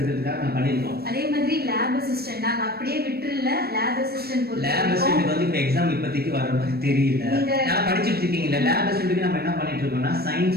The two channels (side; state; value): left; late; 0.46 ms